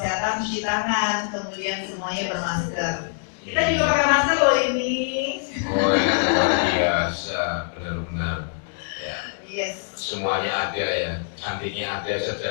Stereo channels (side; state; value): right; silent; digital silence